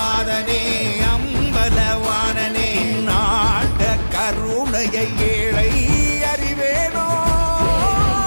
அம்பலவானனே, நாட கருணையை ஏழை அறிவேனோ,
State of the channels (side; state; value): both; inverted; correlation -1.00